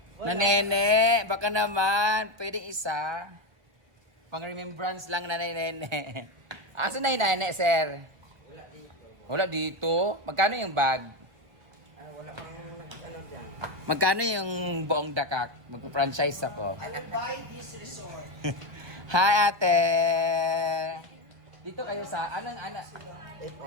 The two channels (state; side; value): late; left; 1.1 ms